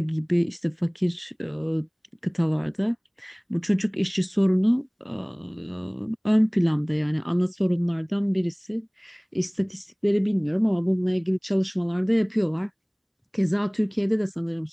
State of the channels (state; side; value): identical; both; correlation 1.00